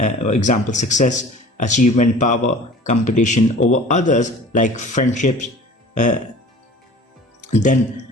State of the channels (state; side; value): normal; both; correlation 0.44